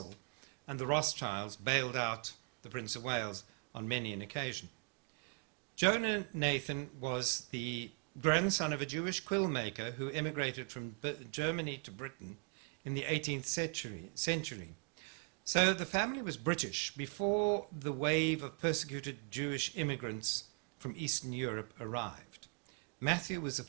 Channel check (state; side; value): quieter; left; 38.1 dB